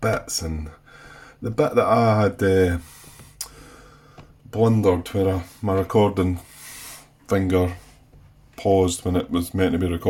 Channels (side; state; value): both; identical; correlation 1.00